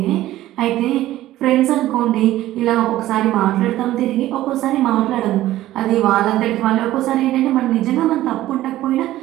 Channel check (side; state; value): left; quieter; 14.8 dB